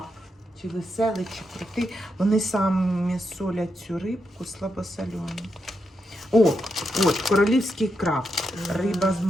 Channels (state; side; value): normal; both; correlation 0.84